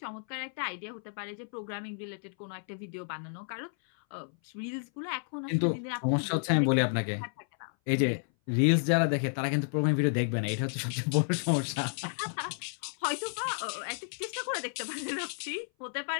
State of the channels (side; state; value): right; silent; 57 dB below the other